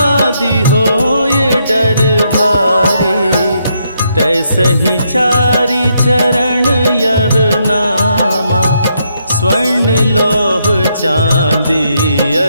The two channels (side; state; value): both; inverted; correlation -0.77